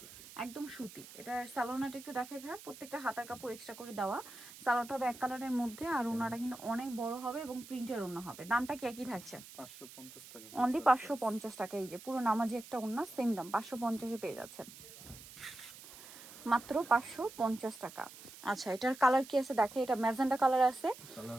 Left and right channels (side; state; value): right; noise; hiss, 17 dB below the sound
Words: একদম সুতি। এটার সালোয়ারটা একটু দেখাই ভাই। প্রত্যেকটা হাতার কাপড় এক্সট্রা করে দেওয়া। সালোয়ারটা হবে এক কালারের মধ্যে, আর ওড়নাটা কিন্তু অনেক বড় হবে এবং প্রিন্টের ওড়না হবে। দামটা কি একই থাকছে? 550 টাকা। অনলি 550 টাকা। এই যে পুরো নামাজি একটা ওড়না, সেম দাম 550-এ পেয়ে যাচ্ছেন, মাত্র 550 টাকা। আচ্ছা, এটার কালার কি আছে দেখে। এটা ম্যাজেন্ডা কালার আছে, কালার